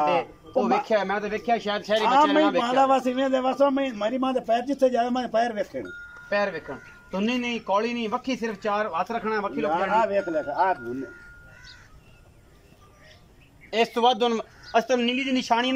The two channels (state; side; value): identical; both; correlation 1.00